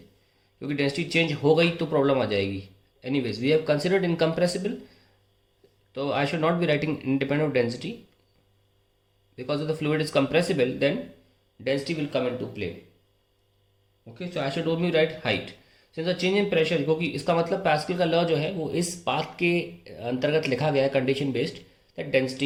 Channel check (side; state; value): both; identical; correlation 1.00